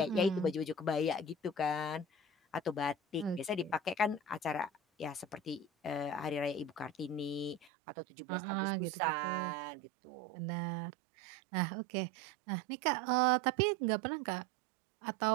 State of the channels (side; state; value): left; drops out; at 7.7 s